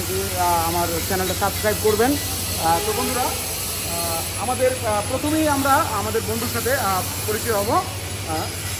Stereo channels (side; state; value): both; identical; correlation 1.00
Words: আমার চ্যানেলটা সাবস্ক্রাইব করবেন। তো বন্ধুরা, আমাদের প্রথমেই আমরা আমাদের বন্ধুর সাথে পরিচয় হব।